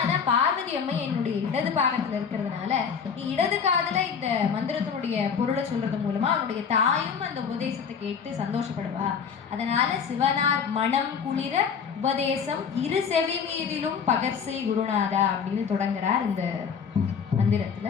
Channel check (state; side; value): quieter; right; 6.5 dB